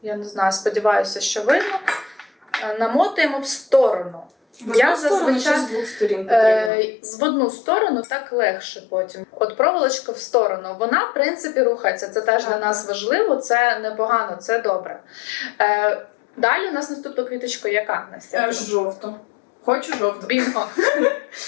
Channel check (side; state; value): right; drops out; at 6.7 s